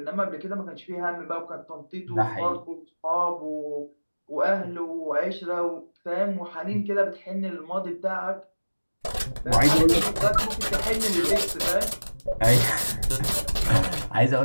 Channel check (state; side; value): inverted; both; correlation -1.00